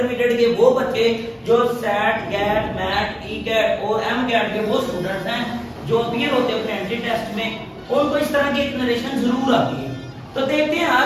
के वो बच्चे जो SET, GATE, MAT, E CAT और एम कैट के वो स्टूडेंट्स हैं जो अपीयर होते हैं अपने एंट्री टेस्ट में, उनको इस तरह की एक नरेशन जरूर आती है। तो देखते हैं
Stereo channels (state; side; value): identical; both; correlation 1.00